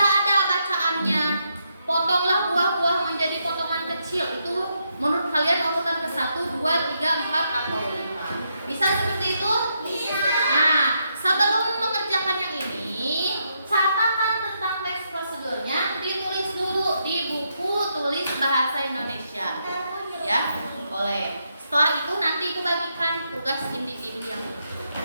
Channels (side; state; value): both; inverted; correlation -0.79